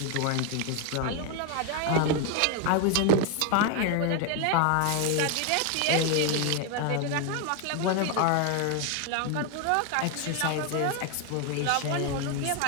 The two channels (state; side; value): different; both; correlation 0.01